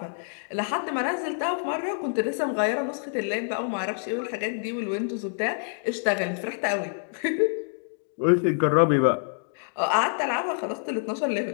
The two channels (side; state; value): right; silent; digital silence